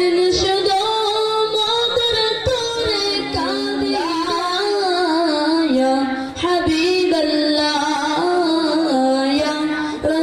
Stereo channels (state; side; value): identical; both; correlation 1.00